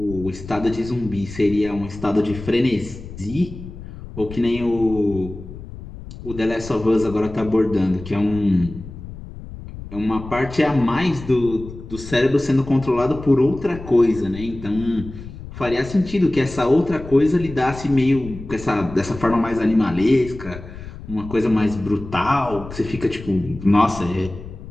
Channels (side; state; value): left; noise; rumble, 13 dB below the sound